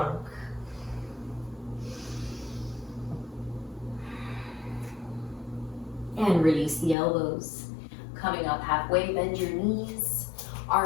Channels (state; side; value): drops out; right; at 7.0 s